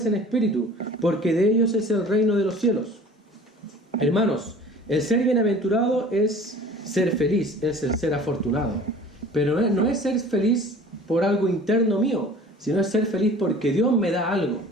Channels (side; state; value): both; normal; correlation 0.46